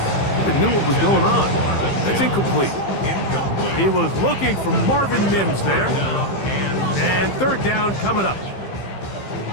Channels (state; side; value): late; right; 15 ms